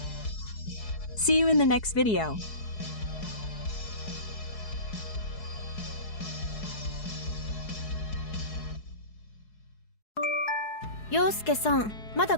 See you in the next video. 陽介さん、まだ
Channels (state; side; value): late; right; 4.7 ms